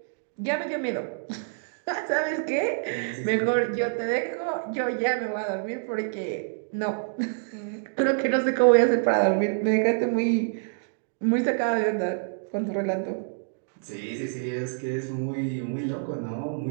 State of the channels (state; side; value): silent; left; digital silence